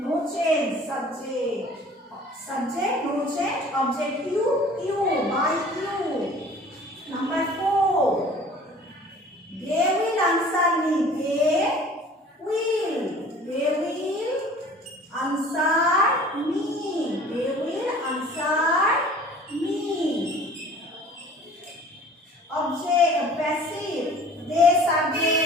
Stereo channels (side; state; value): both; normal; correlation 0.48